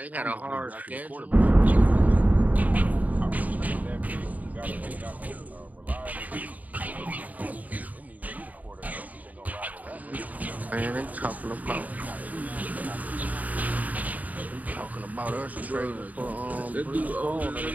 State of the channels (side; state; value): left; late; 0.075 ms